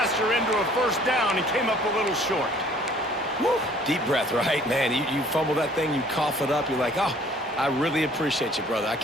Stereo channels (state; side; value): normal; both; correlation 0.56